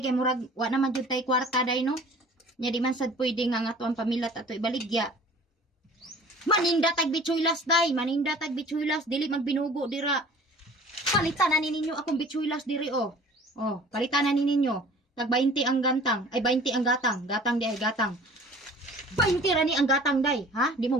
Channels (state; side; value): normal; both; correlation 0.47